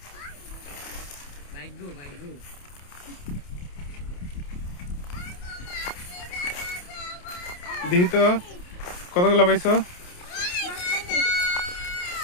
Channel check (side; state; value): right; late; 28 ms